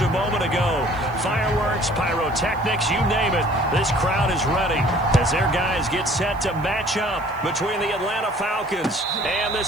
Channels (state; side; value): noise; right; hiss, 28 dB below the sound